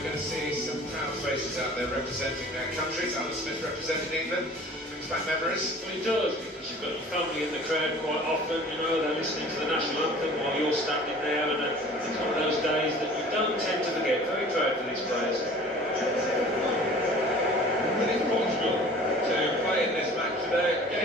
we're going to see some proud faces out there representing their countries. Alan Smith representing England. Brings back memories. Well, he does, because you've got your family in the crowd quite often, you know, they're listening to the national anthem while you're standing there, and it's one of those days that you don't tend to forget. Very proud for these players. But it's Portugal to play in this match today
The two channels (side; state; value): both; normal; correlation 0.46